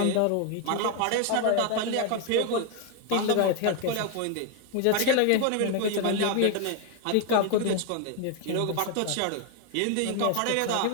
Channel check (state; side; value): different; both; correlation 0.01